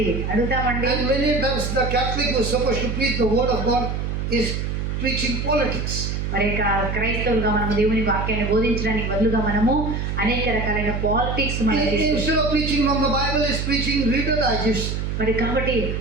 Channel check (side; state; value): right; noise; hum, 2 dB below the sound